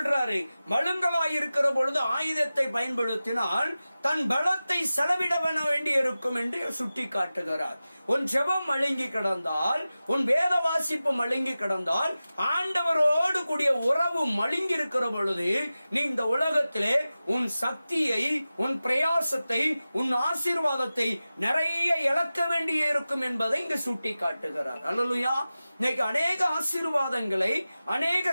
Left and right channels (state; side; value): inverted; both; correlation -0.95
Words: மழுங்கலாய் இருக்கிற பொழுது ஆயுதத்தை பயன்படுத்தினால் தன் பலத்தை செலவிட வேண்டி இருக்கும் என்று சுட்டி காட்டுகிறார். உன் ஜெபம் மழுங்கி கிடந்தால், உன் வேத வாசிப்பு மழுங்கி கிடந்தால், ஆண்டவரோடு கூடிய உறவு மழுங்கி இருக்கிற பொழுது நீ இந்த உலகத்திலே உன் சக்தியை, உன் பிரயாசத்தை, உன் ஆசீர்வாதத்தை நிறைய இழக்க வேண்டிய இருக்கும் என்பதை இங்கு சுட்டி காட்டுகிறார். அல்லேலூயா. இன்னைக்கு அநேக ஆசீர்வாதங்களை,